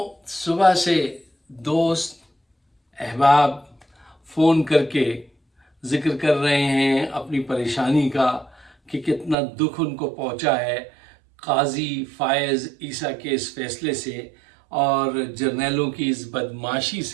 صبح سے دوست احباب فون کر کے ذکر کر رہے ہیں اپنی پریشانی کا کہ کتنا دکھ ان کو پہنچا ہے قاضی فائز عیسیٰ کے اس فیصلے سے اور جرنیلوں کی اس بدمعاشی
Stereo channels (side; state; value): left; drops out; at 9.3 s